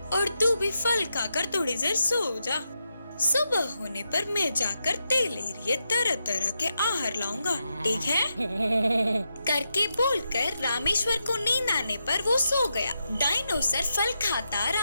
और तू भी फल खाकर थोड़ी देर सो जा। सुबह होने पर मैं जाकर तेरे लिए तरह तरह के आहार लाऊंगा, ठीक है? करके बोलकर रामेश्वर को नींद आने पर वो सो गया। डायनोसर फल खाता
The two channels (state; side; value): inverted; both; correlation -0.85